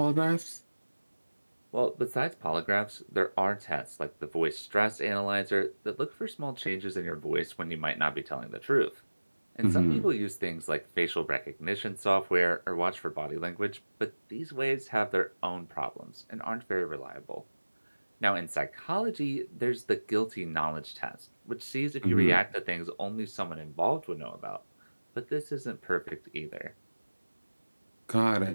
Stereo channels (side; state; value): both; inverted; correlation -1.00